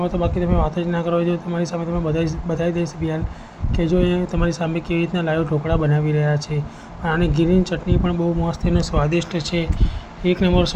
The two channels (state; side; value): identical; both; correlation 1.00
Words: તો બાકી તમે વાત જ ના કરો. જો તમારી સામે તમે બતાવી દઈશ બિહાર કે જો એ તમારી સામે કેવી રીતના લાઈવ ઢોકળા બનાવી રહ્યા છે. આની ગ્રીન ચટણી પણ બહુ મસ્ત અને સ્વાદિષ્ટ છે. એક નંબર